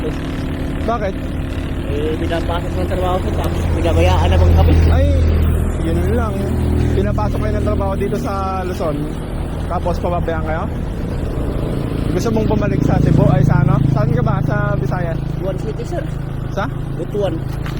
Bakit? Pinapasok ng trabaho ko. Tapos pinabayaan naman kami. Ay, yun lang. Pinapasok kayo ng trabaho dito sa Luzon. Tapos pababayaan kayo? Gusto mong bumalik sa Cebu? Ay, sa ano? Saan ka ba? Sa Visayas? Butuan City sir. Sa? Butuan.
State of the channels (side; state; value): both; identical; correlation 1.00